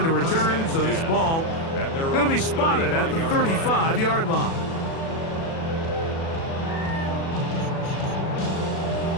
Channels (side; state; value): right; late; 37 ms